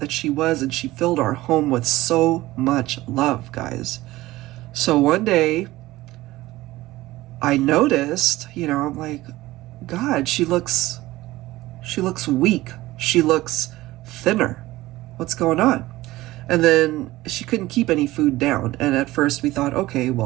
she was, and she filled our home with so much love, guys. So one day, I noticed, you know, I'm like, God, she looks weak. She looks thinner. What's going on? And then she couldn't keep any food down. And at first we thought, okay,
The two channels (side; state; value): left; quieter; 17.7 dB